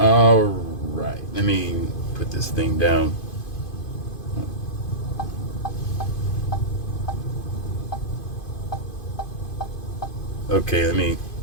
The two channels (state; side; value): late; right; 2.5 ms